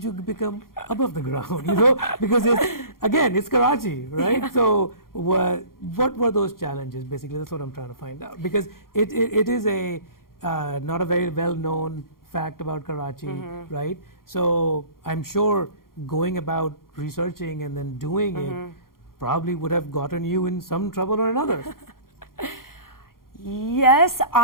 you become above the ground? You know, because it's Karachi, right? So what were those challenges? Basically, that's what I'm trying to find out, because it is a not a very well-known fact about Karachi, right? So I'm sure going about researching and then doing it probably would have gotten you in some trouble or another. Yes,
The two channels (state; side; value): late; right; 0.92 ms